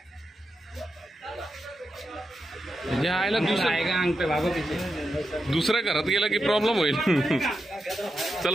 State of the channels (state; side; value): normal; both; correlation 0.87